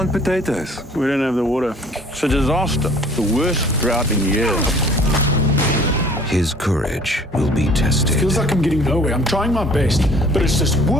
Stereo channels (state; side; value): normal; both; correlation 0.52